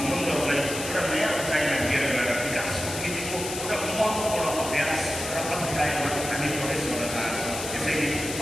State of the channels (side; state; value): left; noise; hiss, 7 dB below the sound